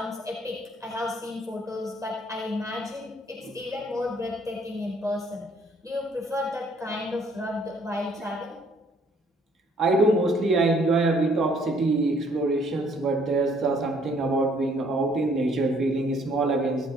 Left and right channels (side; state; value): both; normal; correlation 0.63